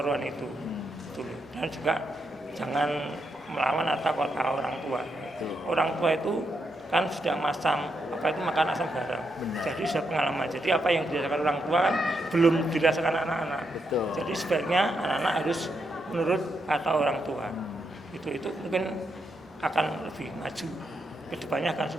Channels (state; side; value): normal; both; correlation 0.81